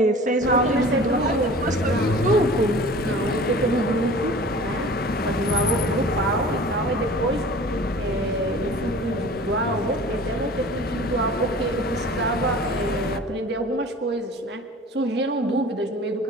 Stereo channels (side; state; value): both; normal; correlation 0.42